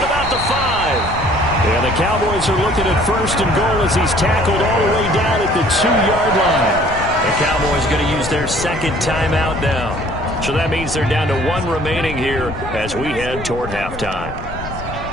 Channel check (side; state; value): left; noise; rumble, 10 dB below the sound